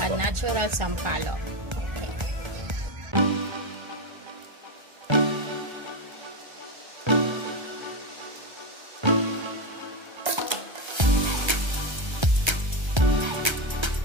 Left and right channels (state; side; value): late; left; 1.3 ms